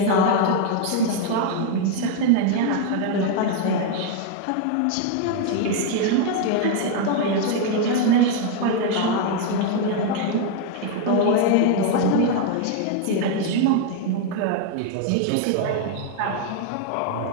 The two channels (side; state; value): both; different; correlation 0.01